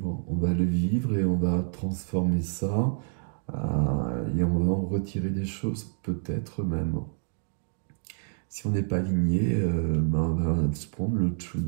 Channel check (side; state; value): left; silent; 59 dB below the other